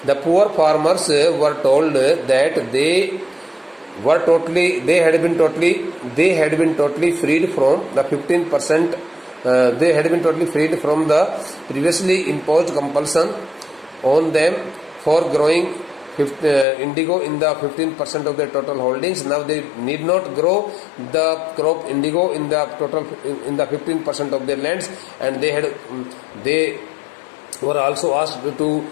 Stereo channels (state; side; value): drops out; right; at 16.7 s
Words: The poor farmers were told that they had been totally freed from the 15%. They had been totally freed from the previously imposed compulsion on them for growing indigo in the 15% of their total holdings. Now they need not grow the crop indigo in the 15% of their lands, and they were also asked to